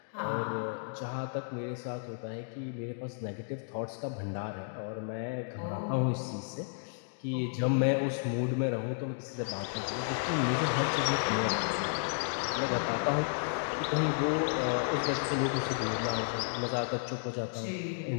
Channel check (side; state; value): right; silent; digital silence